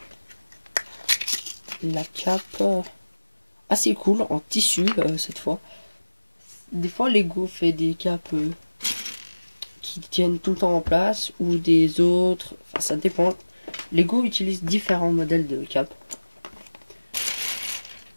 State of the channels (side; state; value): both; inverted; correlation -1.00